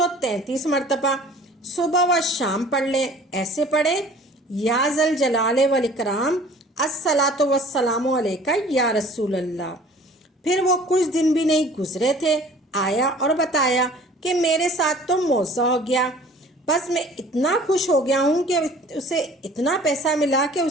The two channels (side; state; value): both; normal; correlation 0.49